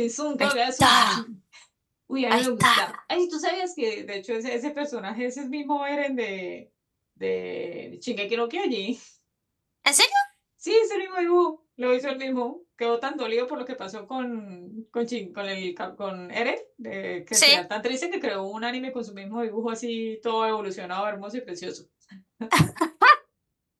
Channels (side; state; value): both; identical; correlation 1.00